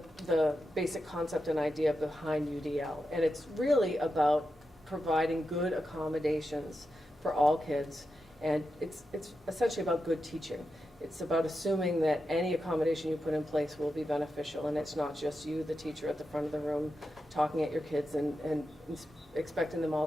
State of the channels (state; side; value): normal; both; correlation 0.89